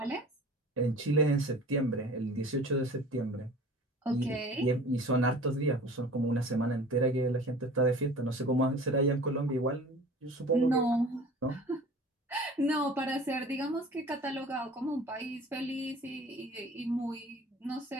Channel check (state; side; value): normal; both; correlation 0.43